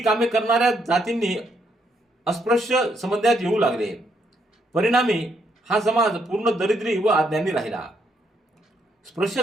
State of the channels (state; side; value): normal; both; correlation 0.75